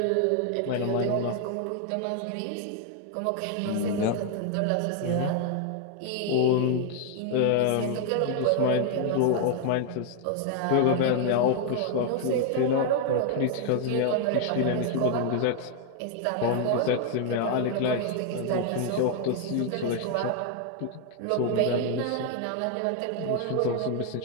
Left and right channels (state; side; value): different; both; correlation 0.00